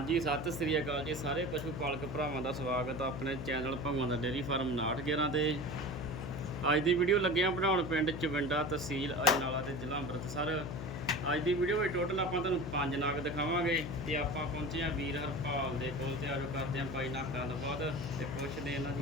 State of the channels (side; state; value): left; noise; hum, 7 dB below the sound